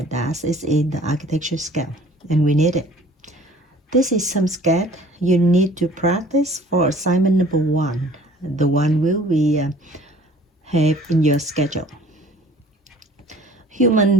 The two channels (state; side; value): normal; both; correlation 0.51